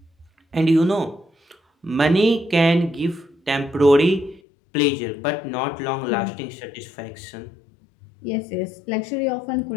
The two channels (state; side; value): drops out; right; at 4.4 s